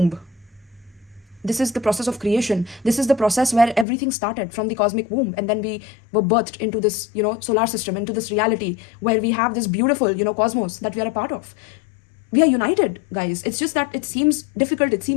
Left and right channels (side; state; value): right; drops out; at 3.9 s